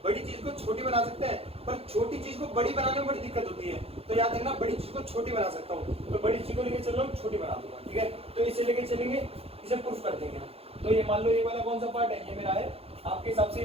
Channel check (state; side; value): late; left; 0.29 ms